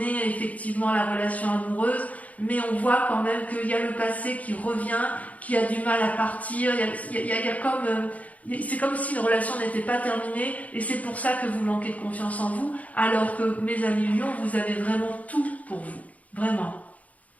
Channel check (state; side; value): late; right; 0.071 ms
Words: effectivement la relation amoureuse, mais on voit quand même qu'il y a le passé qui revient, qui a du mal à partir, c'est comme si une relation n'était pas terminée et c'est pour ça que vous manquez de confiance en vous, alors que mes amis Lions, vous avez vraiment tout pour vous, vraiment.